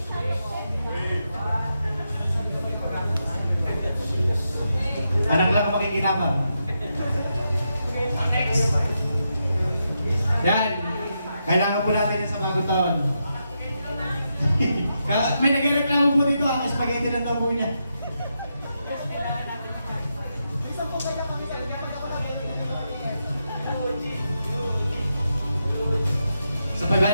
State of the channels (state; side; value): inverted; both; correlation -0.85